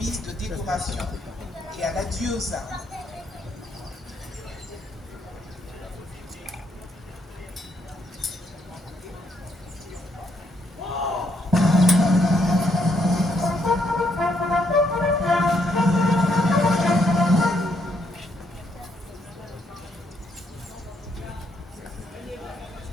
de décoration et à l'adieu aux armes.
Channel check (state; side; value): normal; both; correlation 0.74